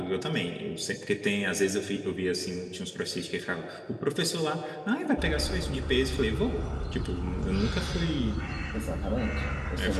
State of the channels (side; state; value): both; identical; correlation 1.00